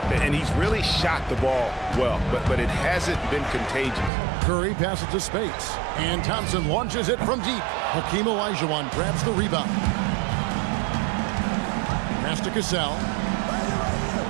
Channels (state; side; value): drops out; left; at 4.1 s